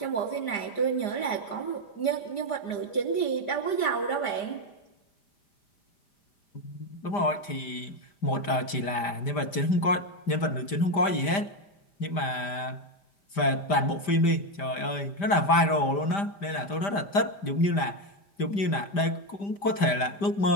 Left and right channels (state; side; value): late; right; 5.0 ms